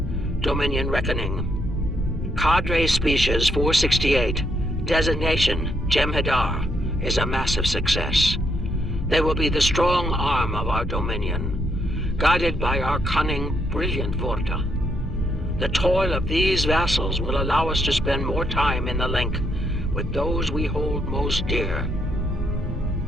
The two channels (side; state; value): both; normal; correlation 0.76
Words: Dominion Reckoning. Cadre Species 468, designation Jem'Hadar, is a massive success. They will be the strong arm of our Dominion, guided by our cunning, brilliant Vorta. The toil of these vassals will allow us to spend more time in the link with those we hold most dear.